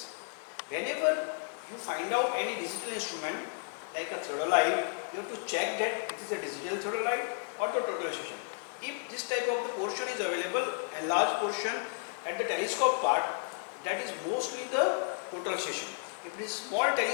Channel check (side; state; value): right; silent; 56 dB below the other